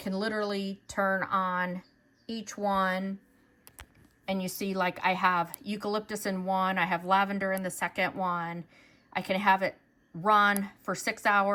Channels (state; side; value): identical; both; correlation 1.00